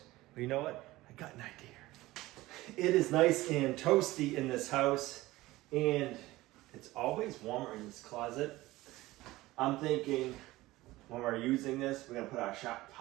but you know what? I got an idea. It is nice and toasty in this house, and it's always warmer in this closet. I'm thinking when we're using this, we're gonna put our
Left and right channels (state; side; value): quieter; left; 18.3 dB